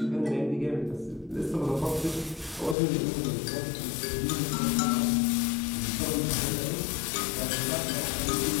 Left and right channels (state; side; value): drops out; right; at 2.8 s